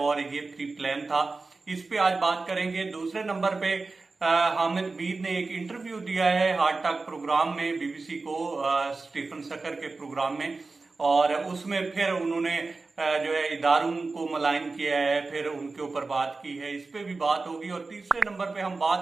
ये प्री प्लान था। इस पे आज बात करेंगे। दूसरे नंबर पे हामिद मीर ने एक इंटरव्यू दिया है हार्ट टॉक प्रोग्राम में, बीबीसी को, स्टीफन सकर के प्रोग्राम में, और उसमें फिर उन्होंने जो है इदारों को मलाइन किया है, फिर उनके ऊपर बात की है। इस पे भी बात होगी। और तीसरे नंबर पे हम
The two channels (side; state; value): left; quieter; 3.8 dB